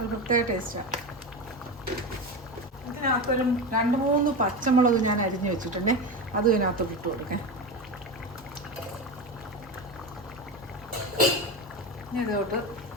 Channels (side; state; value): both; normal; correlation 0.21